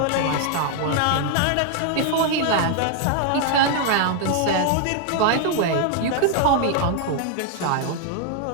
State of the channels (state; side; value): different; both; correlation 0.00